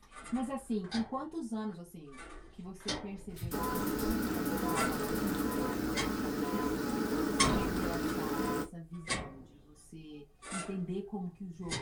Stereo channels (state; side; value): identical; both; correlation 1.00